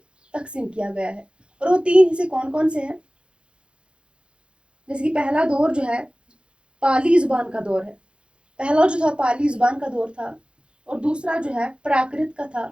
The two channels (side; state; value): left; late; 0.056 ms